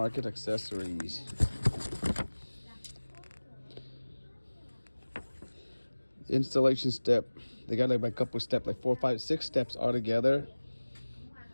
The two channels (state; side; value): inverted; both; correlation -1.00